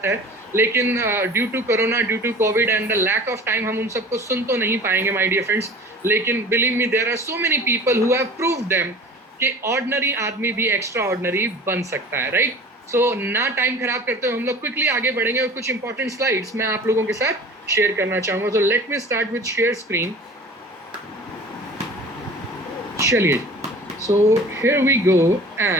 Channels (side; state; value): both; normal; correlation 0.42